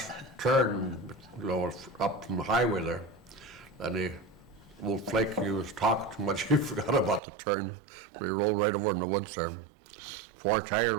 turn, you know, up from the highway there. And old Flake, he was talking too much. He forgot about the turn. We rolled right over in the woods there. 4 tires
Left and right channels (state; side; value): drops out; left; at 7.2 s